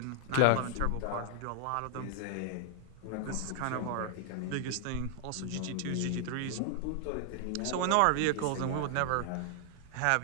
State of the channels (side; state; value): both; different; correlation 0.00